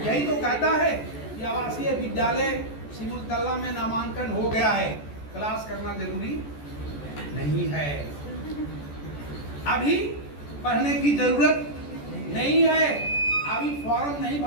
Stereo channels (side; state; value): right; late; 14 ms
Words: यही तो कहता है कि आवासीय विद्यालय सिमुलतला में नामांकन हो गया है, क्लास करना जरूरी नहीं है। अभी पढ़ने की जरूरत नहीं है, अभी फॉर्म नहीं